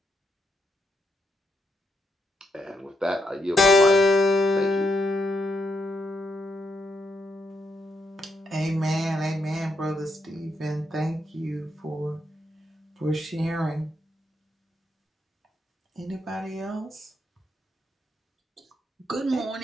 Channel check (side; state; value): both; normal; correlation 0.79